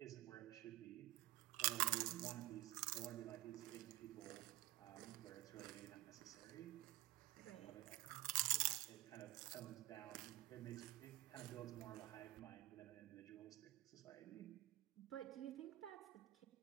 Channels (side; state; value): left; quieter; 17.7 dB